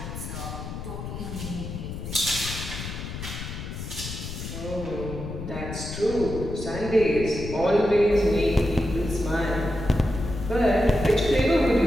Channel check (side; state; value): left; noise; rumble, 8 dB below the sound